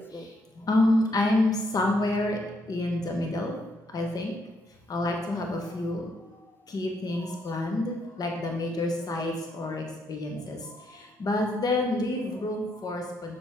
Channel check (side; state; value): both; normal; correlation 0.75